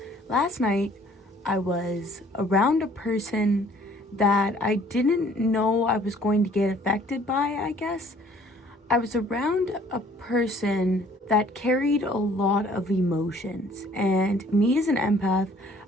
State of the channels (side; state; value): both; normal; correlation 0.57